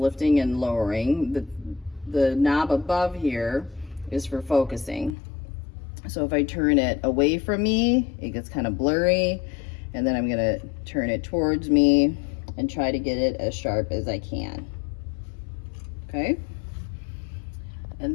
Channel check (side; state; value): right; drops out; at 5.2 s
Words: and lowering, the knob above here is for focusing. So if I turn it away from me, it gets kind of blurry, and then I'm gonna turn it towards me and try to get it as sharp as I can. Okay?